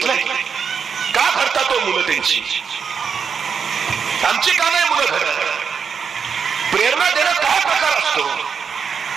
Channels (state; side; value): quieter; left; 6.4 dB